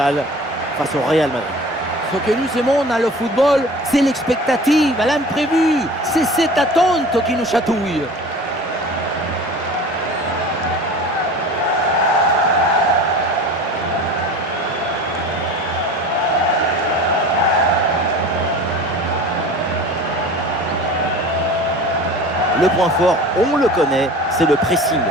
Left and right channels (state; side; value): normal; both; correlation 0.39